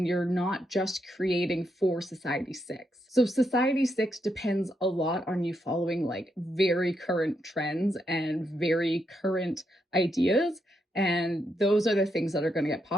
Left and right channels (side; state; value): both; normal; correlation 0.81